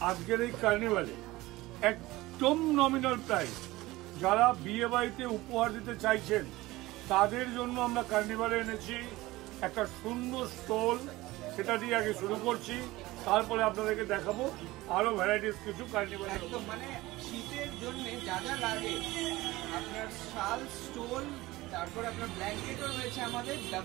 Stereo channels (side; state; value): left; quieter; 19.0 dB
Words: আজকের এই কার্নিভালে একদম নমিনাল প্রাইস। যারা বিয়ে বাড়িতে উপহার দিতে চাইছেন তাদের জন্য আমরা কার্নিভালে এনেছি একটা সুন্দর স্টল। সেটা দিয়ে আগে শুরু করছি, তারপরে আপনাদেরকে দেখাবো আরো ভ্যারাইটিস কিছু কার্নিভাল। একদম মানে শীতের জন্য যা যা লাগে, আপনার শাল, স্টোল, তারপর আপনার ব্ল্যাঙ্কেটও রয়েছে আমাদের